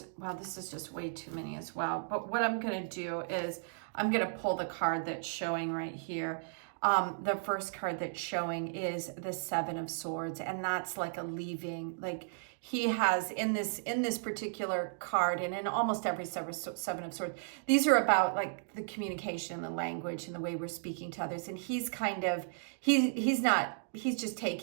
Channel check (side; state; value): left; silent; digital silence